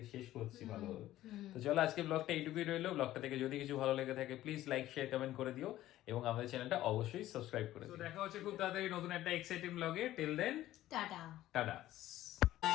শেষ করছি ভালোভাবে। তো চলো আজকে ব্লগটা এইটুকুই রইলো। ব্লগটা থেকে যদি কিছু ভালো লেগে থাকে প্লিজ লাইক শেয়ার কমেন্ট করে দিও এবং আমাদের চ্যানেলটা অবশ্যই সাবস্ক্রাইব করে দিও। তো দেখা হচ্ছে খুব তাড়াতাড়ি নতুন একটা এক্সাইটিং ব্লগে। Till then tata. টাটা।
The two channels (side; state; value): right; quieter; 14.4 dB